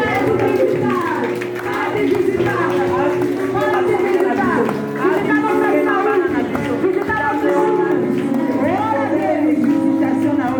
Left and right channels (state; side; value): identical; both; correlation 1.00